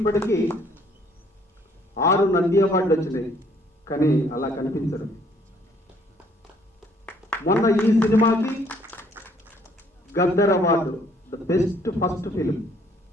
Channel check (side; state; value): both; normal; correlation 0.63